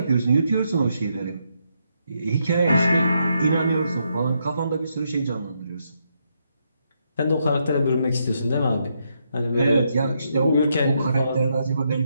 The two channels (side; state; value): both; inverted; correlation -0.79